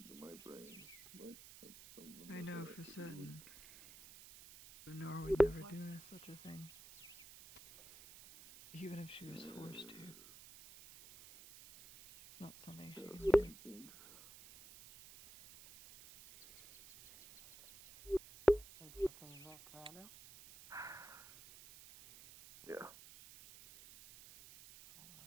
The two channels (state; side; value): noise; right; hiss, 17 dB below the sound